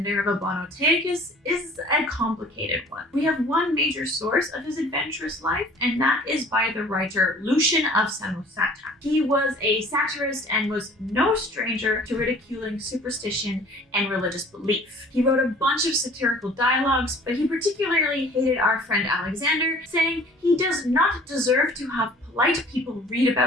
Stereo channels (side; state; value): both; normal; correlation 0.50